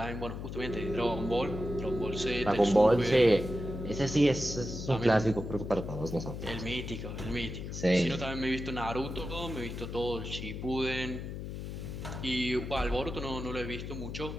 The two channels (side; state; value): left; noise; hum, 7 dB below the sound